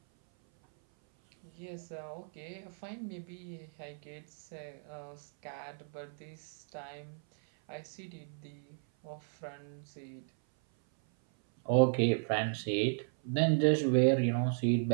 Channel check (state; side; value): silent; left; 54 dB below the other